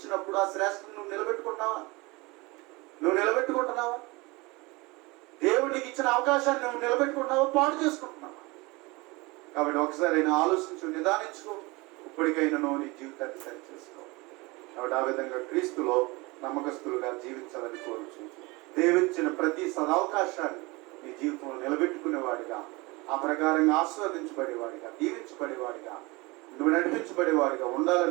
ఆ శ్రేష్టత నువ్వు నిలబెట్టుకుంటున్నావా? దేవుడు నీకు ఇచ్చిన అవకాశాన్ని నువ్వు నిలబెట్టుకుంటున్నావా, పాడు చేసుకుంటున్నావా? కాబట్టి ఒకసారి అయినా ఆలోచించు, నిదానించుకో. ఇప్పటికైనా నువ్వు నీ జీవితాన్ని సరి చేసుకో. కాబట్టి ఆ విధంగా క్రీస్తులో నమ్మకస్తులుగా జీవించాలని కోరుచు, దేవుడిచ్చిన ప్రతి సదవకాశాన్ని నీ జీవితంలో నిలబెట్టుకునేవాడిగా, ఆ ప్రకారంగా ఆస్వాదించబడేవాడిగా, దీవించబడేవాడిగా, నువ్వు నడిపించబడేవాడిగా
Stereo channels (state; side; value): quieter; left; 24.4 dB